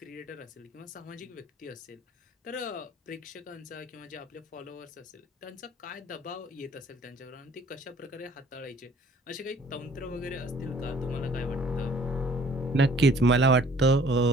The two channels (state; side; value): normal; both; correlation 0.56